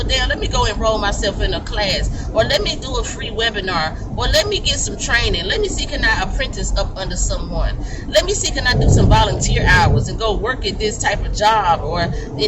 damn, let me go enroll myself in a class, or let me do a free webinar, or let me get some training. Let me see, can I apprentice up under someone? Let me see, can I do some volunteer hours and go work at this type of job or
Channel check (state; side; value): identical; both; correlation 1.00